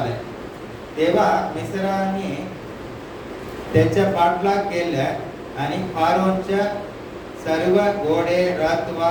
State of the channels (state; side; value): identical; both; correlation 1.00